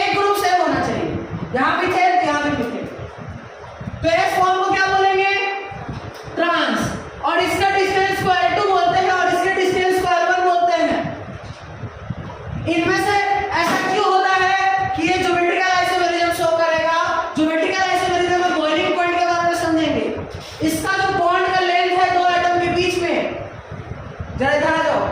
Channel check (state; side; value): identical; both; correlation 1.00